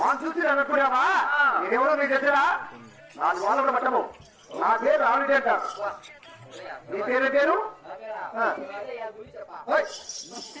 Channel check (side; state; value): both; identical; correlation 1.00